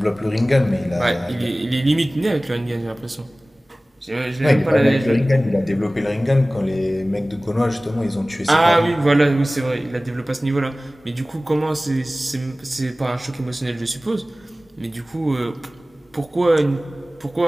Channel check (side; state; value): both; normal; correlation 0.98